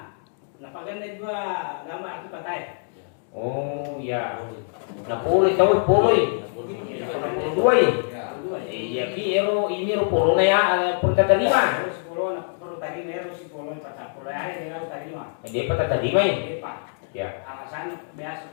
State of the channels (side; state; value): right; silent; digital silence